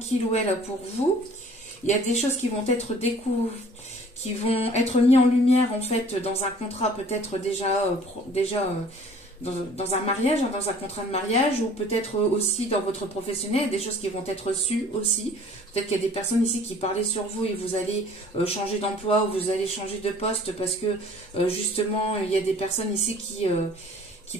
ou elle a pour vous. Il y a des choses qui vont être qui vont être mis en lumière en fait dans un contrat peut-être déjà dans un mariage, hein, dans un contrat de mariage, ou peut-être aussi dans votre professionnel, des choses qui vont être reçues aussi. Peut-être qu'il y a des personnes ici qui parlaient sur vous et vous allez changer d'emploi ou vous allez changer de poste parce que justement il y a des personnes ici qui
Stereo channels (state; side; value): normal; both; correlation 0.51